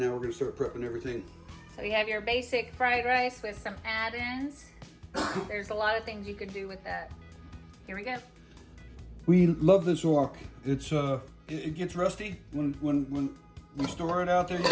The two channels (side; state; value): both; identical; correlation 1.00